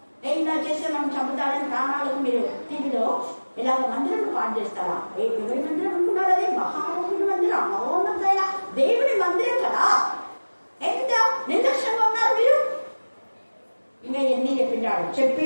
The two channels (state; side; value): inverted; both; correlation -1.00